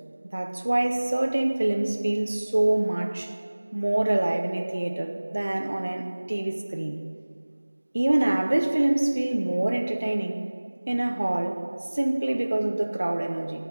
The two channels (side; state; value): both; inverted; correlation -1.00